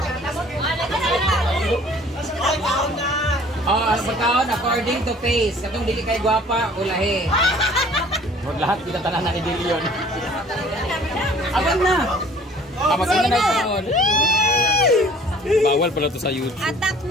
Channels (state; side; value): normal; both; correlation 0.52